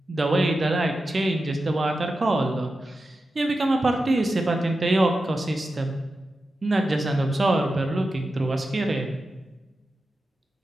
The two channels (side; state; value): both; normal; correlation 0.91